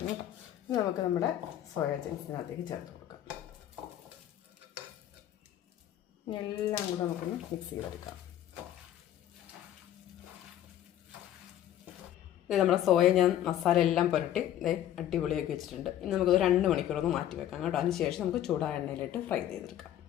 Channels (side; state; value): right; quieter; 11.7 dB